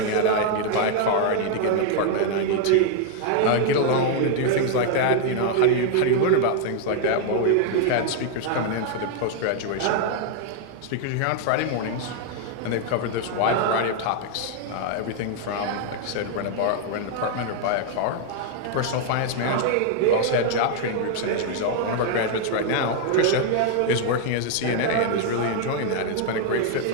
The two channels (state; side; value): different; both; correlation 0.00